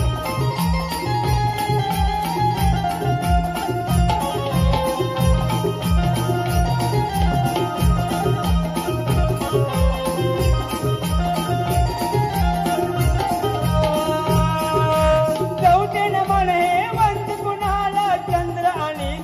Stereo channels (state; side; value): identical; both; correlation 1.00